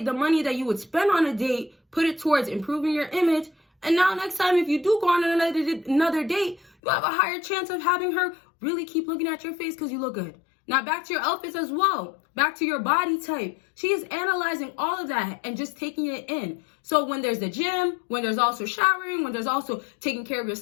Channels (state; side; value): drops out; right; at 6.7 s